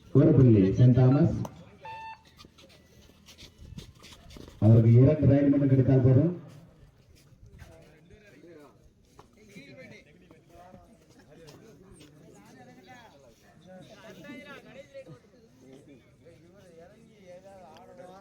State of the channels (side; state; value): both; identical; correlation 1.00